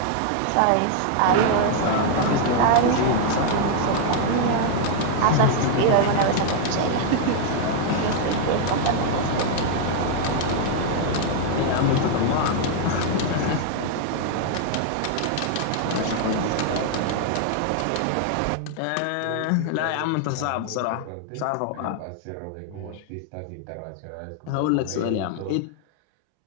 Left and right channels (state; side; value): different; both; correlation 0.00